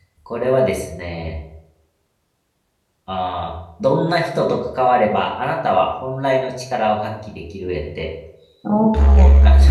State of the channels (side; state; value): both; identical; correlation 1.00